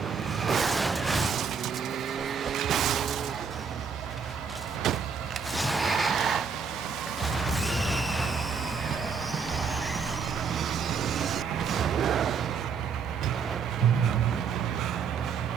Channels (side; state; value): left; quieter; 6.0 dB